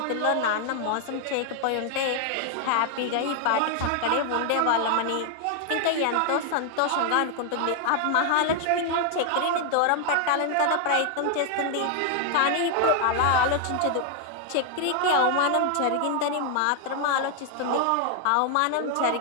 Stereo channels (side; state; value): both; different; correlation 0.00